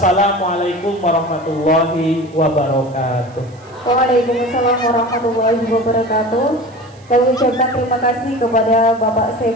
warahmatullahi wabarakatuh. Waalaikumsalam warahmatullahi wabarakatuh. Kami ucapkan terima kasih kepada Bapak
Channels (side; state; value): right; noise; hiss, 30 dB below the sound